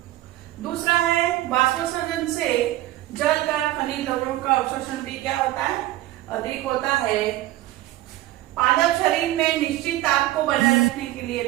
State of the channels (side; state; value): left; quieter; 15.8 dB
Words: दूसरा है वाष्पोत्सर्जन से जल का खनिज लवणों का अवशोषण भी क्या होता है? अधिक होता है। पादप शरीर में निश्चित ताप को बनाए रखने के लिए